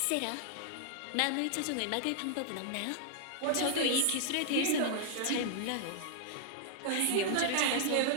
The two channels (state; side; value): different; both; correlation -0.01